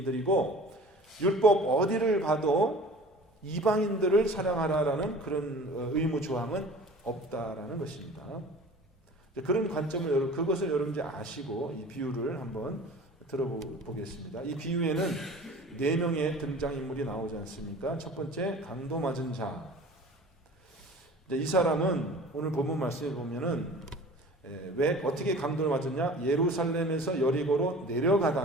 율법 어디를 봐도 이방인들을 사랑하라라는 그런 의무 조항은 없다라는 것입니다. 그런 관점을 그것을 여러분 이제 아시고 이 비유를 한번 들어보겠습니다. 이 비유에는 4명의 등장인물이 나오지 않습니까? 첫 번째 강도 맞은 자. 이 사람은 오늘 본문 말씀에 보면은 왜 어떻게 강도를 맞았냐? 예루살렘에서 여리고로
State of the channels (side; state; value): both; normal; correlation 0.43